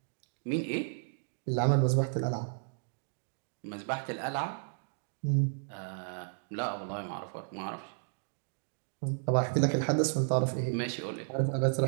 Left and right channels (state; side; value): silent; left; digital silence